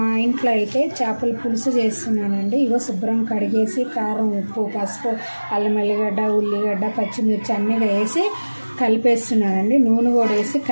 మా ఇంట్లో అయితే చేపల పులుసు చేస్తున్నానండి. ఇగో శుభ్రం కడిగేసి కారం, ఉప్పు, పసుపు, అల్లం ఎల్లిగడ్డ, ఉల్లిగడ్డ, పచ్చిమిర్చి అన్నీ వేసి కలిపేస్తున్నానండి. నూనె కూడా వేసి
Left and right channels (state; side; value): inverted; both; correlation -1.00